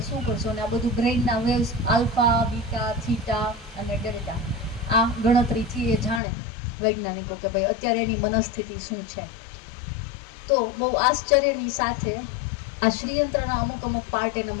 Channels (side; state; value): right; drops out; at 6.2 s